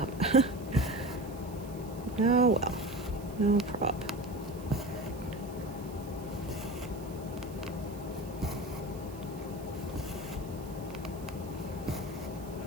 Oh well. No prob.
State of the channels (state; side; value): noise; right; hiss, 20 dB below the sound